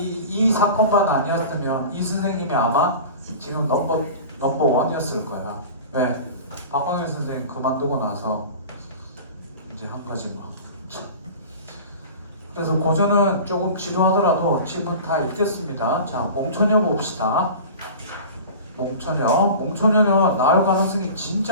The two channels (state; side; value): inverted; both; correlation -0.36